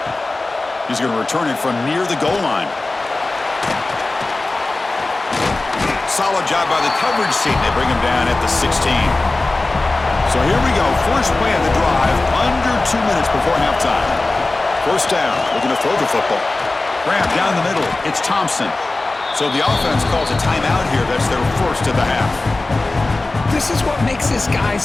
He's going to return it from near the goal line. Solid job by the coverage team. They bring him down at the 16. So here we go. First play of the drive, under 2 minutes before halftime. First down, looking to throw the football. Grab down the middle. It's Thompson. So the offense calls a timeout here. That's their first of the half. This is what makes this guy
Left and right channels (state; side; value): quieter; right; 3.1 dB